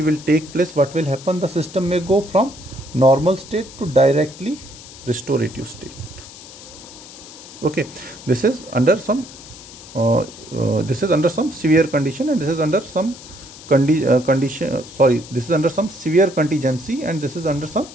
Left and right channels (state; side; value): noise; left; hiss, 17 dB below the sound